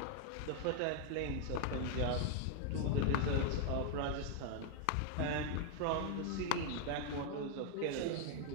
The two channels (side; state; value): both; different; correlation 0.00